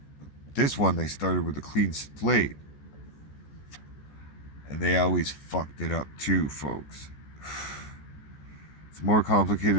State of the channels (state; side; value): late; right; 14 ms